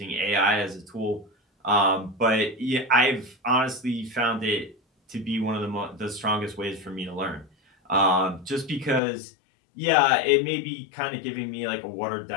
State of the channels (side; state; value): right; drops out; at 9.0 s